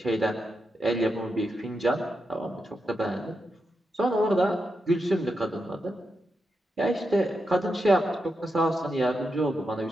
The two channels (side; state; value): both; normal; correlation 0.86